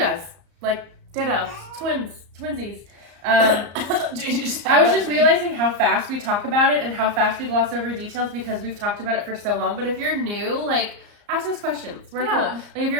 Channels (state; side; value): late; left; 34 ms